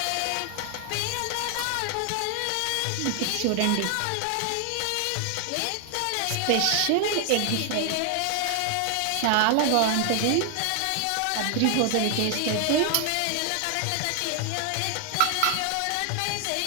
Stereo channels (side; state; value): both; different; correlation 0.00